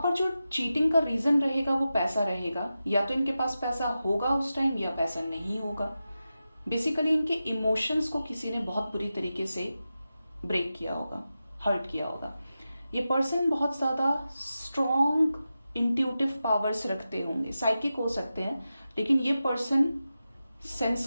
जो चीटिंग का रीजन रहेगा वो पैसा रहेगा। या तो इनके पास पैसा होगा उस टाइम, या पैसा नहीं होगा। बेसिकली इनके इमोशंस को किसी ने बहुत बुरी तरीके से ब्रेक किया होगा, हर्ट किया होगा। ये पर्सन बहुत ज्यादा स्ट्रॉन्ग इंट्यूटिव पावर्स रखते होंगे, साइकिक हो सकते हैं, लेकिन ये पर्सन सेंस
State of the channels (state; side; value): inverted; both; correlation -0.92